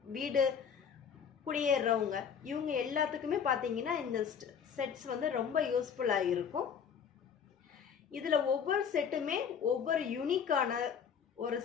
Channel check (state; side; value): quieter; right; 7.3 dB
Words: வீடு குடியேறவங்க இவங்க எல்லாத்துக்குமே பார்த்தீங்கன்னா இந்த செட்ஸ் வந்து ரொம்ப யூஸ்ஃபுல்லாக இருக்கும். இதில் ஒவ்வொரு செட்டுமே ஒவ்வொரு யூனிக்கான ஒரு